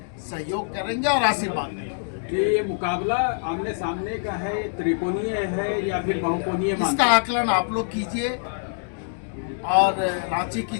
सहयोग करेंगे और आशीर्वाद देंगे। कि ये मुकाबला आमने सामने का है, त्रिकोणीय है या फिर बहुकोणीय? इसका आकलन आप लोग कीजिए और रांची की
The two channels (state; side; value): silent; right; digital silence